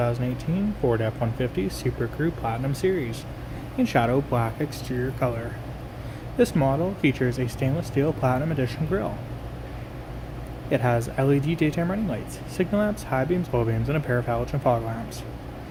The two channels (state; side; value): identical; both; correlation 1.00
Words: Ford F-150 SuperCrew Platinum Series in shadow black exterior color. This model features a stainless steel Platinum Edition grille. It has LED daytime running lights, signal lamps, high beams, low beams, and a pair of halogen fog lamps.